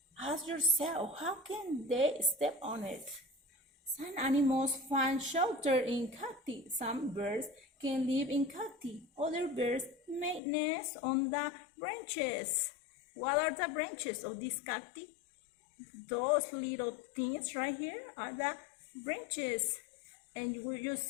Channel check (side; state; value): right; drops out; at 10.4 s